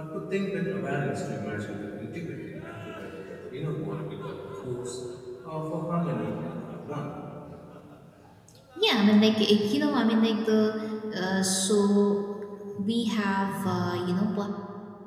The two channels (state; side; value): identical; both; correlation 1.00